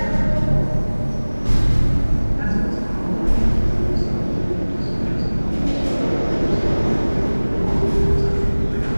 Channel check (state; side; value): inverted; both; correlation -1.00